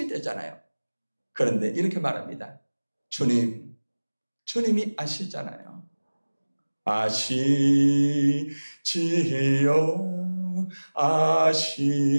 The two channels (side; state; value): both; inverted; correlation -1.00